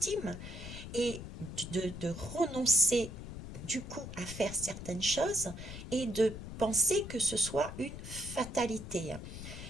et de renoncer du coup à faire certaines choses et de penser que ce soit une fatalité.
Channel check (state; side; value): noise; left; rumble, 10 dB below the sound